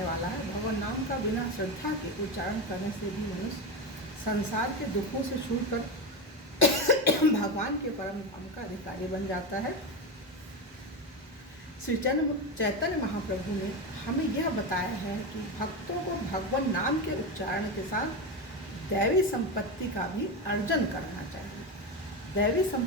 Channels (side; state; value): both; normal; correlation 0.16